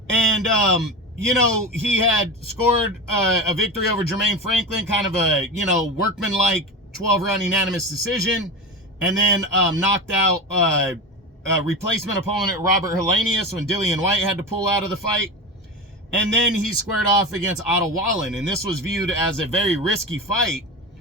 And you know, he had scored a victory over Jermaine Franklin, kind of a, you know, workmanlike 12-round unanimous decision, and then knocked out replacement opponent Robert Helenius when Dillian White had to pull out of the fight. And then he squared off against Otto Wallen, and this was viewed as a very risky fight.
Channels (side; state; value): both; normal; correlation 0.26